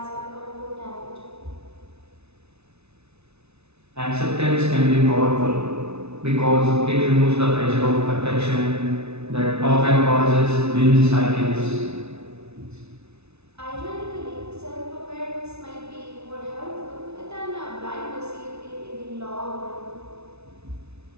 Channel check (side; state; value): left; late; 0.80 ms